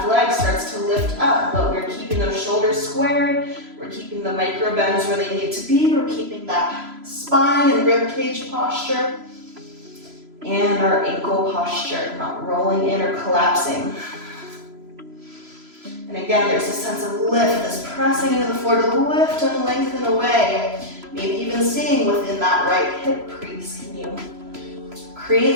leg starts to lift up, but we're keeping those shoulders squared. We're keeping the micro bends where they need to be. We're keeping that spine and rib cage posture and our ankle posture, not rolling in or collapsing. And again, there's a sense of lift, this pressing into the floor to lift and lengthen away. Maybe even staying within that right hip crease. Can you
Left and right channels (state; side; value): late; left; 3.0 ms